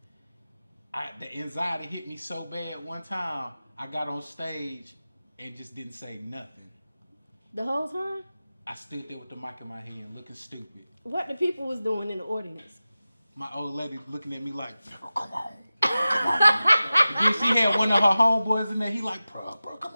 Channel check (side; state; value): both; inverted; correlation -0.95